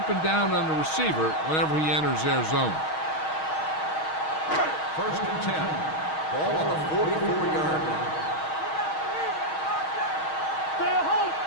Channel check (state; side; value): late; right; 6.4 ms